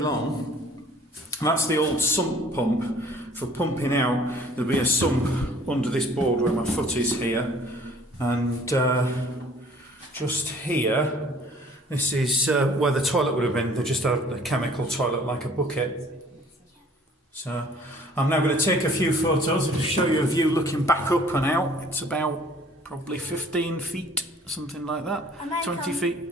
That's the old sump pump for pumping out. There'll be a sump under this board where my foot is here. And just here, this is where the toilet would have been. They just had a chemical toilet like a bucket. So I'm now going to take a few photos and show you a view looking back up and out. It's about probably 15 feet, something like that. 20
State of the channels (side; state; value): both; normal; correlation 0.54